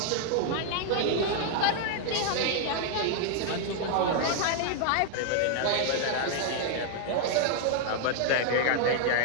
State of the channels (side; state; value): both; different; correlation 0.00